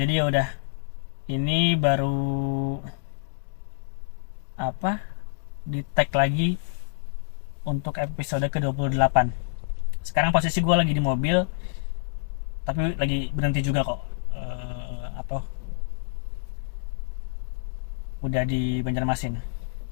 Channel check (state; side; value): silent; right; digital silence